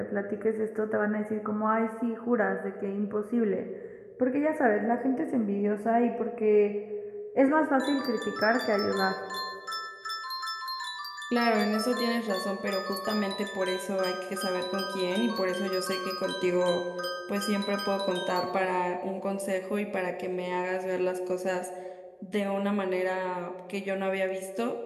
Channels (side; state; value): both; identical; correlation 1.00